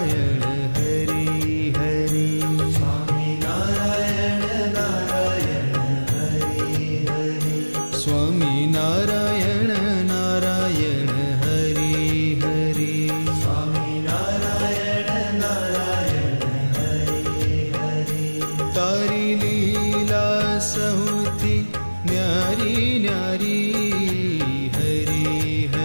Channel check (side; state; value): both; inverted; correlation -1.00